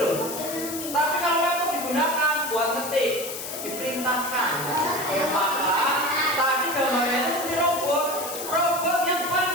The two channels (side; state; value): left; noise; hiss, 8 dB below the sound